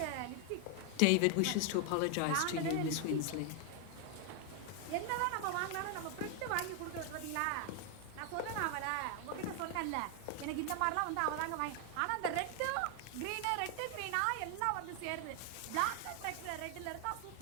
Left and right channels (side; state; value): both; different; correlation 0.00